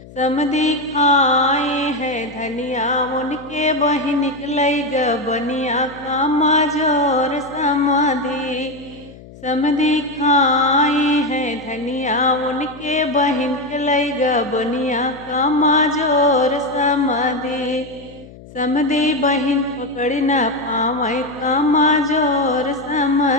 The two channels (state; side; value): noise; left; hum, 19 dB below the sound